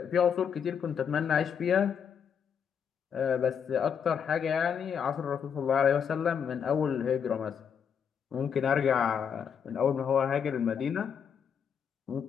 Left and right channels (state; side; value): quieter; right; 7.4 dB